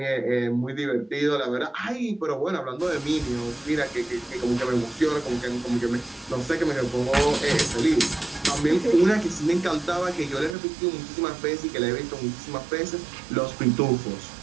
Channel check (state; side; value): drops out; left; at 10.6 s